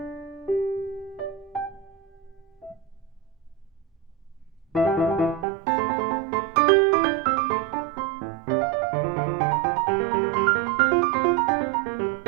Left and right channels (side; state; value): left; drops out; at 5.5 s